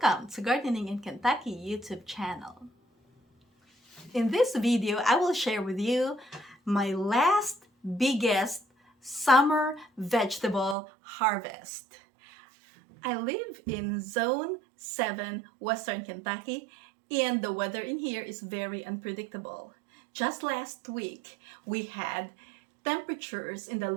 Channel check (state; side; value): drops out; left; at 10.8 s